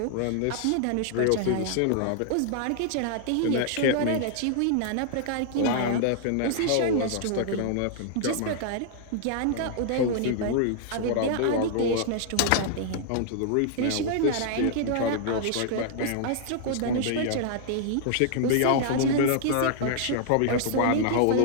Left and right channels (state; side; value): different; both; correlation -0.01